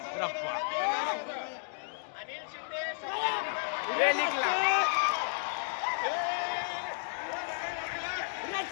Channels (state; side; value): silent; right; digital silence